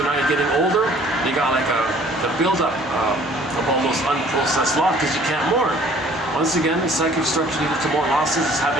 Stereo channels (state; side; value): normal; both; correlation 0.55